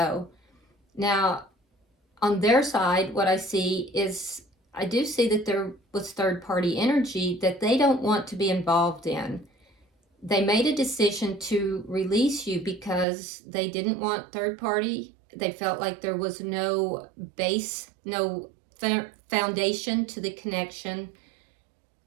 Now, on their side, what I see is I do see that there was third-party energy that they don't want to be involved in. They made a decision to release you because they didn't want third-party. They felt like there was no base, no foundation to the connection.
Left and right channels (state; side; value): drops out; left; at 13.1 s